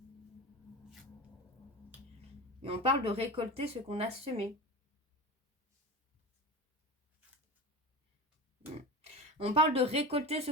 Et on parle de récolter ce qu'on a semé. On parle de récolter ce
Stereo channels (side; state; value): both; normal; correlation 0.29